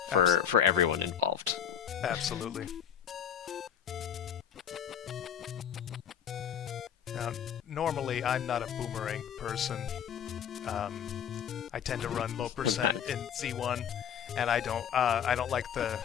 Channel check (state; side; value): quieter; right; 8.8 dB